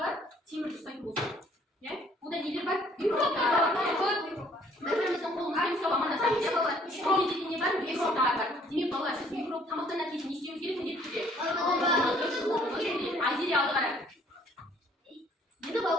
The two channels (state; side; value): normal; both; correlation 0.60